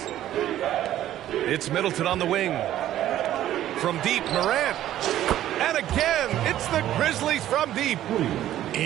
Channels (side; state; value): left; quieter; 12.7 dB